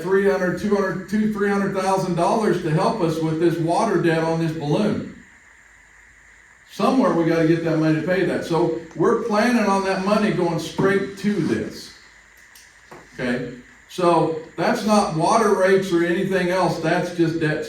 $300,000 to help us with this water debt on this balloon. Somewhere we got to get that money to pay that. So we're planning on that money going straight to this. Okay, so that's not water rates or anything else, that's just debt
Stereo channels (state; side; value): identical; both; correlation 1.00